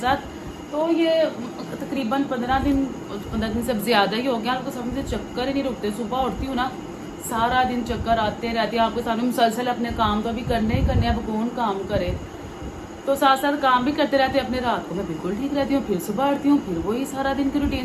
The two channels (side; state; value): both; identical; correlation 1.00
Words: तो ये तकरीबन 15 दिन से ज़्यादा ही हो गया, आपको समझ से चक्कर ही नहीं रुकते। सुबह उठती हूँ ना, सारा दिन चक्कर आते रहते हैं। आपके सामने मुसलसल अपने काम तो अभी करने ही करने, अब कौन काम करे। तो साथ साथ काम भी करते रहते हैं अपने। रात को मैं बिल्कुल ठीक रहती हूँ, फिर सुबह उठती हूँ, फिर वही सारा दिन की